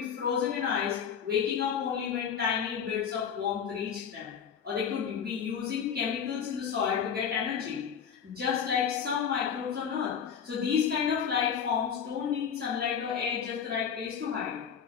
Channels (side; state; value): right; quieter; 7.5 dB